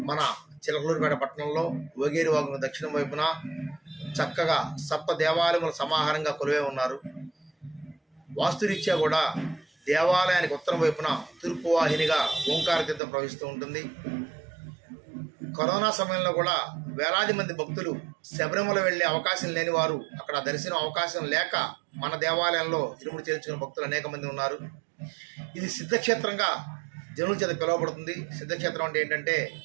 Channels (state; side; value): drops out; left; at 13.0 s